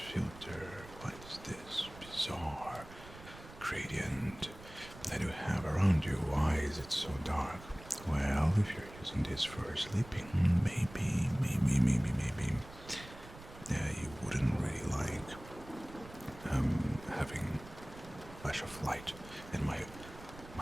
filter? What is this bizarre gradient that you have around you? Why is it so dark? Well, if you're using this for sleeping, maybe you wouldn't really like having flash of light. And my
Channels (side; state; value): right; noise; rumble, 17 dB below the sound